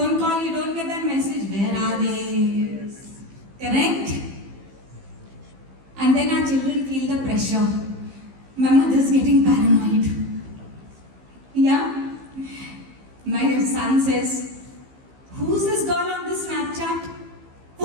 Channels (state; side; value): late; left; 15 ms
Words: call, you don't get that message. Where are they? Yes. Correct? And then our children feel the pressure. My mother's getting paranoid. Yeah? My son says, who's this girl on this Snapchat?